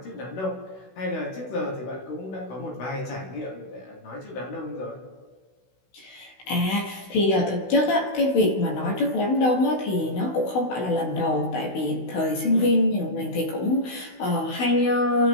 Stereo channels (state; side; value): late; right; 16 ms